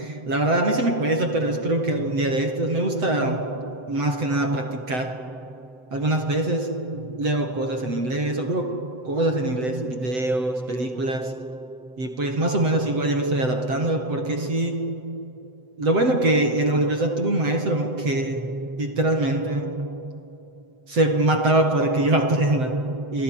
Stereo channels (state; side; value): late; left; 7.9 ms